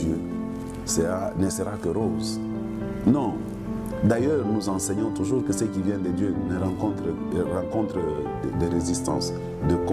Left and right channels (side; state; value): both; identical; correlation 1.00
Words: ne sera que rose. Non. D'ailleurs, nous enseignons toujours que ce qui vient de Dieu rencontre des résistances, de